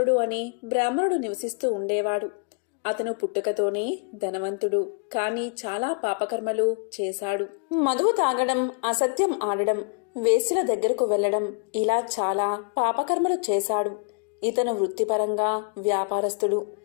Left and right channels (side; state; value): right; quieter; 36.0 dB